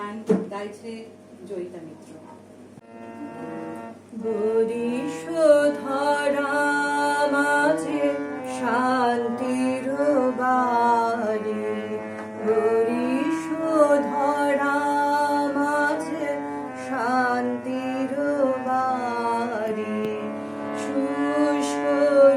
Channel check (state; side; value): identical; both; correlation 1.00